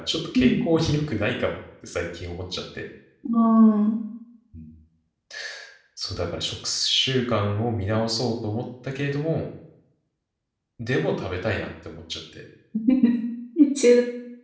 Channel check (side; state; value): both; identical; correlation 1.00